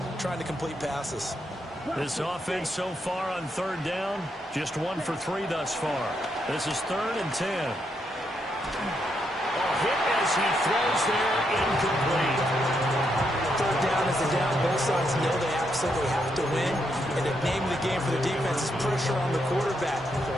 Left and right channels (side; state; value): both; normal; correlation 0.79